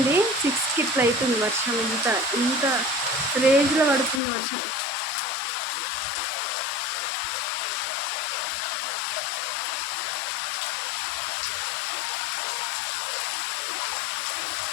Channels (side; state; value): right; drops out; at 4.2 s